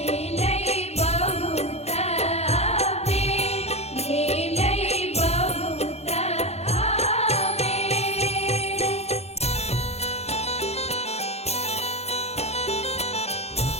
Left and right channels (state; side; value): late; right; 0.31 ms